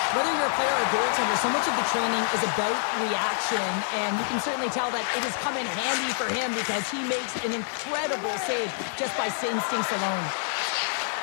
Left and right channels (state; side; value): silent; right; digital silence